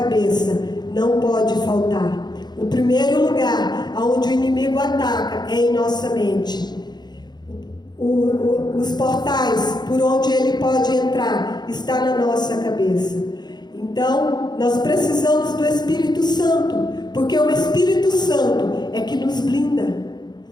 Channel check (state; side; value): late; right; 0.21 ms